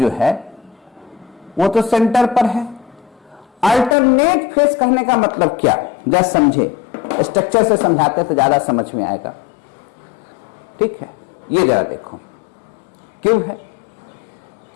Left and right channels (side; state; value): right; drops out; at 4.0 s